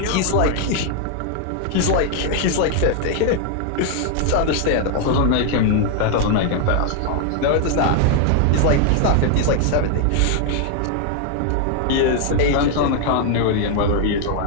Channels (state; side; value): different; both; correlation 0.00